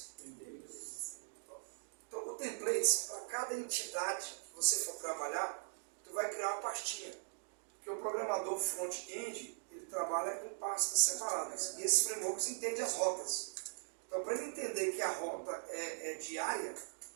Então, o templates, para cada entidade que você for trabalhar, tu vai criar uma pastinha. Porque o programador front-end, ele trabalha com pastas separadas. E esses frameworks entendem as rotas. Então, para ele entender que a rota é diária,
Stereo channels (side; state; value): left; silent; digital silence